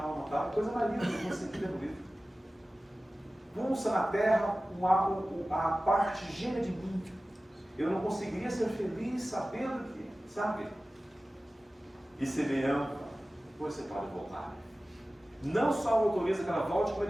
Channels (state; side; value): normal; both; correlation 0.96